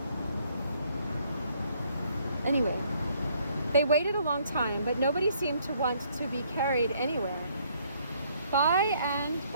Anyway, they waited a long time, but nobody seemed to want to be carried anywhere. By and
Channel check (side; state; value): both; inverted; correlation -0.66